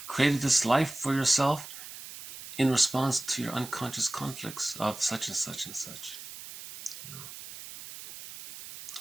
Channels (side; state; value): right; noise; hiss, 13 dB below the sound